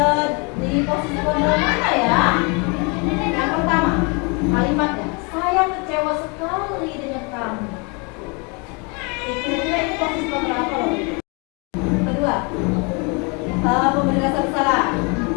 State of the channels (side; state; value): right; quieter; 31.9 dB